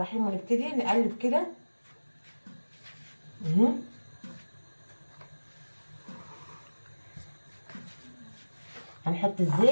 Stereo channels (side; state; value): both; inverted; correlation -1.00